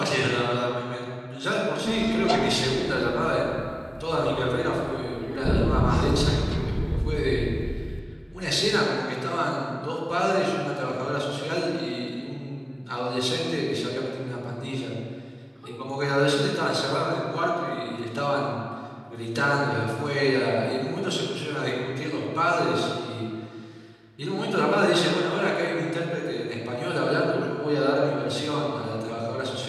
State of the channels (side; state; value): both; identical; correlation 1.00